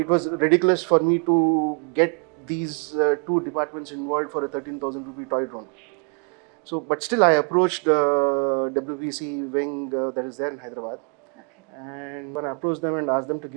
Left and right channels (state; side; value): quieter; left; 38.3 dB